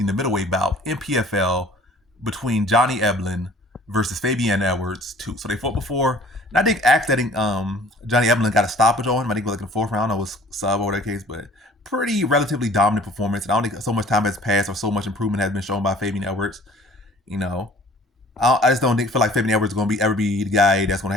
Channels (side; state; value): both; normal; correlation 0.51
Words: the middleweight bout in PFL between Johnny Eblen versus Fabian Edwards 2. So they fought before, and I think Johnny Eblen got a stoppage on him. I think it was like in the fourth round, it was sub or that case, but pretty relatively dominant performance. And I don't think so much time has passed or so much improvement has been shown by Fabian Edwards. I just don't feel like Fabian Edwards is going to ever be the guy that's going to